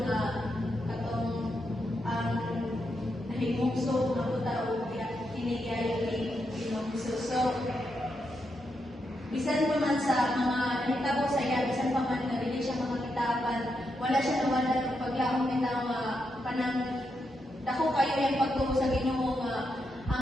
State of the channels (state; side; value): normal; both; correlation 0.83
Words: nga katong ang nahimugso nga puta o kinigayo ni Pinongso. So bisan pa man sa mga nahitabo sa iya, bisan pa man nga dili siya makakitapan, wala siya nawala ng paglaom nila nga kanang dako kayo yung pagtuo sa Ginoo nga